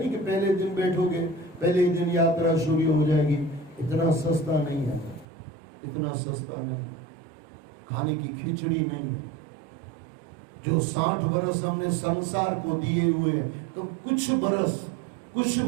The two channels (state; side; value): drops out; left; at 5.2 s